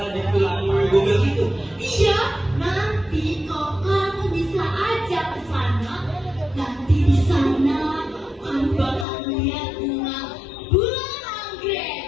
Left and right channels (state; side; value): drops out; right; at 9.1 s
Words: di film Google gitu? Iya, nanti kalau kamu bisa ajak ke sana, nanti di sana kamu bakal lihat bunga bulan